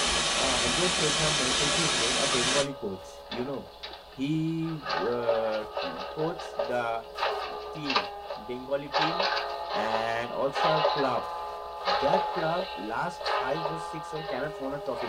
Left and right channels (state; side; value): identical; both; correlation 1.00